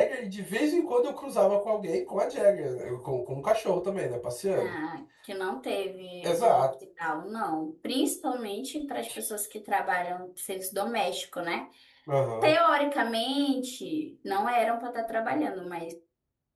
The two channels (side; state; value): both; identical; correlation 1.00